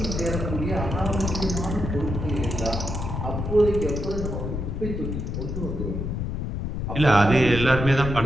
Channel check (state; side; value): noise; left; rumble, 3 dB below the sound